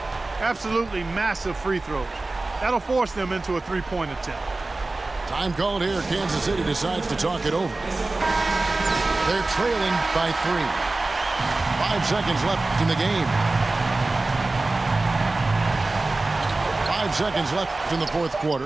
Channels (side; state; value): left; quieter; 3.2 dB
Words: Absolutely massive free throws. That'll force them into a three-point attempt. Time called here. Kansas City decides to talk it over. They're trailing by 3. 5 seconds left in the game. 5 seconds left in the fourth